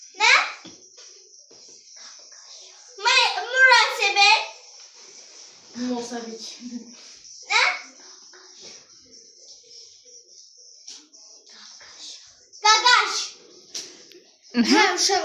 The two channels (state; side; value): identical; both; correlation 1.00